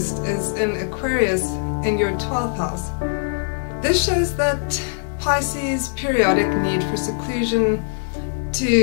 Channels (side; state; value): right; silent; 64 dB below the other